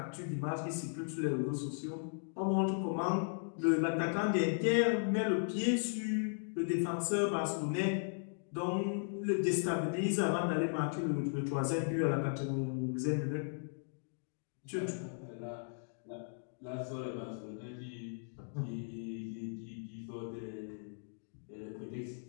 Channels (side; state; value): right; silent; digital silence